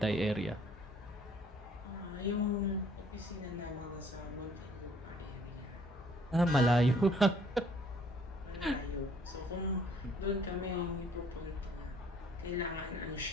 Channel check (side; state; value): both; normal; correlation 0.60